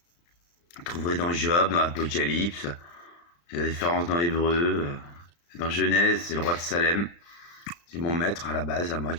Vous trouverez dans Job, dans l'Apocalypse. Il y a la différence dans Hébreu. Dans Genèse, c'est le roi de Salem. C'est mon maître à la base, à moi,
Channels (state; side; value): late; right; 35 ms